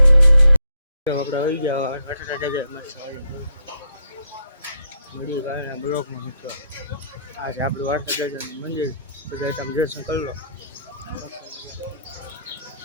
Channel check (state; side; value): inverted; both; correlation -0.73